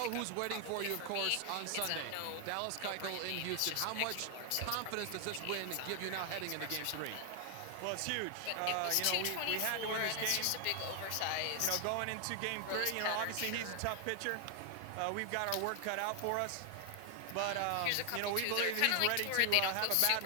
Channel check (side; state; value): both; different; correlation 0.00